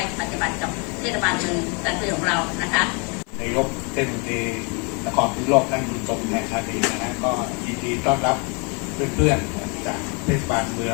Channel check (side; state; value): right; quieter; 33.5 dB